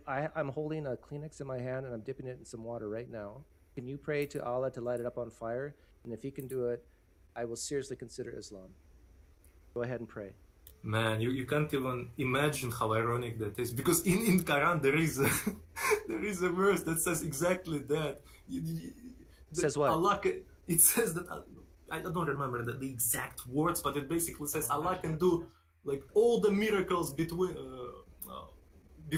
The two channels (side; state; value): both; identical; correlation 1.00